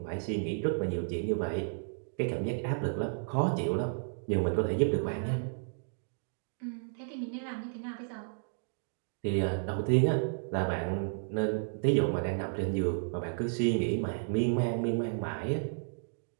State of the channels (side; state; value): left; silent; digital silence